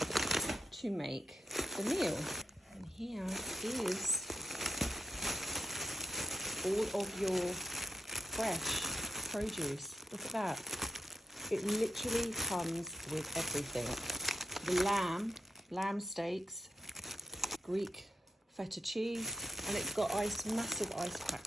to make the meal. And here is all of your fresh produce. Look at that. It literally comes with everything. The lamb steaks, Greek feta cheese, and it's got massive ice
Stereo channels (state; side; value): normal; both; correlation 0.84